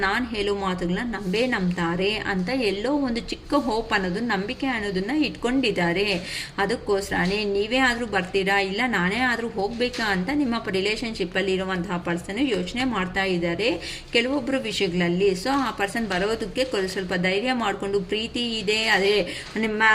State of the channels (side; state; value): both; identical; correlation 1.00